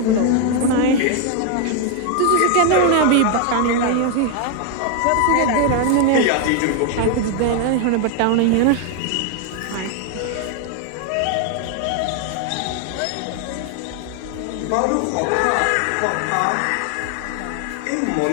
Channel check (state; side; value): different; both; correlation 0.01